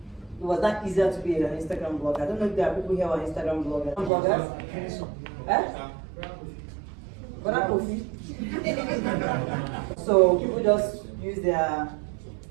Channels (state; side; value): drops out; left; at 4.1 s